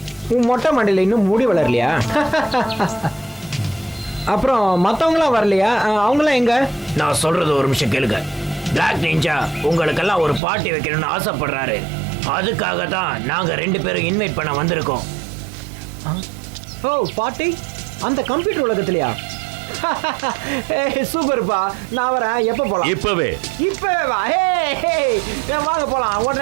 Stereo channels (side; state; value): left; drops out; at 10.4 s